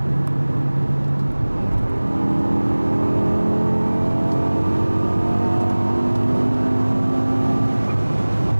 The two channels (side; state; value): both; inverted; correlation -1.00